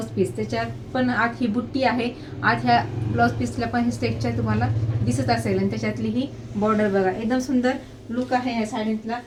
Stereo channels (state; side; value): identical; both; correlation 1.00